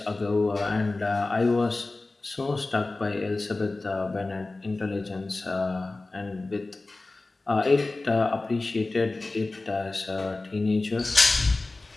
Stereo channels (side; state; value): right; quieter; 3.2 dB